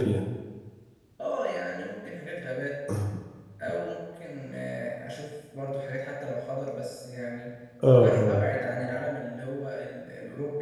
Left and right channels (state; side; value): identical; both; correlation 1.00